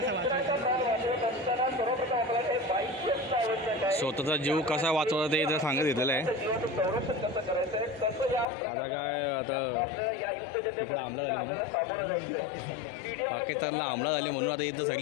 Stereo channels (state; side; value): drops out; right; at 8.5 s